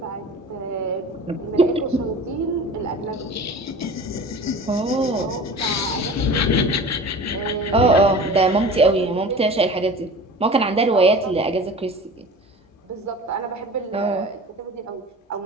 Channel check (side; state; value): both; normal; correlation 0.39